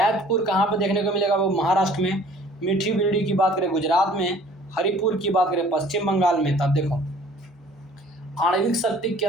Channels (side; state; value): both; normal; correlation 0.53